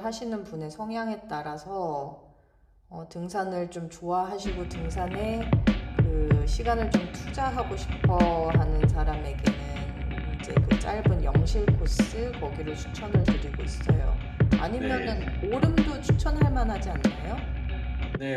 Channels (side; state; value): both; identical; correlation 1.00